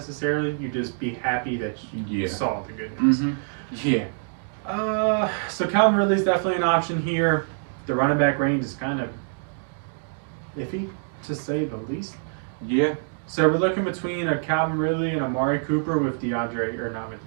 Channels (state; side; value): silent; left; digital silence